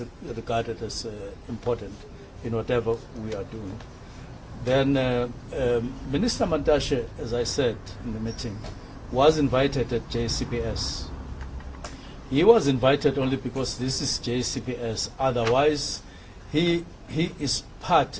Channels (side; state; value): both; identical; correlation 1.00